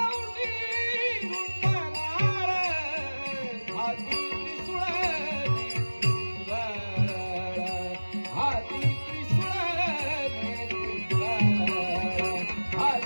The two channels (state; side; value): inverted; both; correlation -1.00